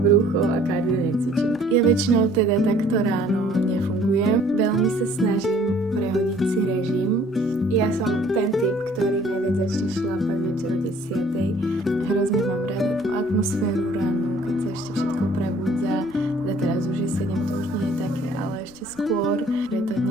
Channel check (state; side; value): noise; left; rumble, 29 dB below the sound